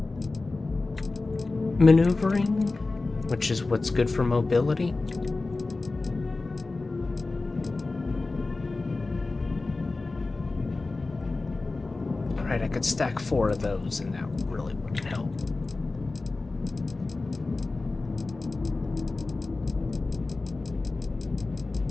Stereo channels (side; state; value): right; quieter; 3.5 dB